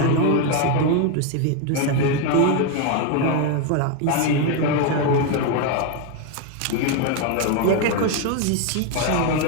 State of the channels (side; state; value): both; different; correlation 0.02